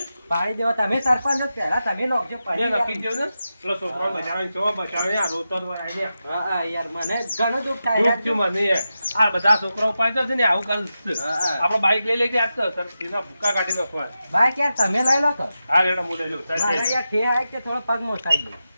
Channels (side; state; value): both; inverted; correlation -0.91